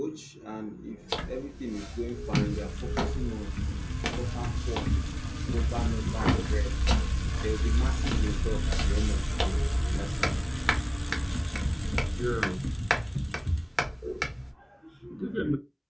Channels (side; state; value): both; identical; correlation 1.00